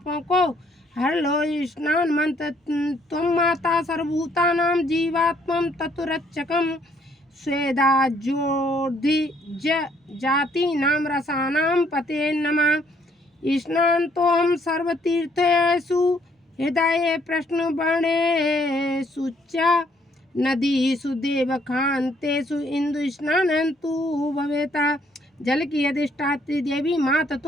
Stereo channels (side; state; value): both; normal; correlation 0.66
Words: को हर लो। स्नान मंत्र, त्वं माता सर्वभूतानां जीवात्मं तत्रक्षकं स्वेदा ज्योति जाति नाम रसानां पते नमः। स्नान तो हम सर्वतीर्थेषु हृदय प्रश्न बणे सुच्चा नदी सुदेव खान्तेषु इंदु स्नानंतु भवेता। जल की अधिष्ठात्री देवी माता